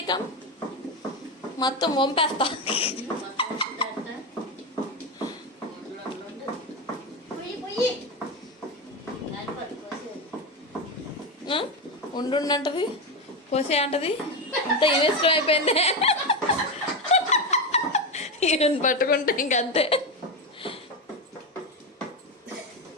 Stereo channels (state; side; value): normal; both; correlation 0.14